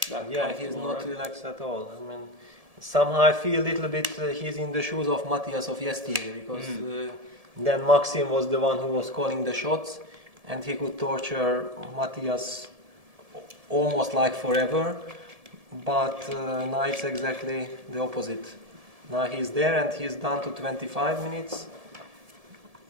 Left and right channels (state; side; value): late; left; 1.7 ms